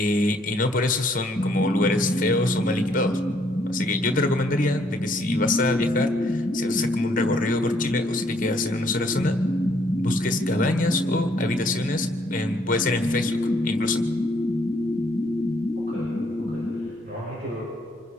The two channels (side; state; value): both; normal; correlation 0.67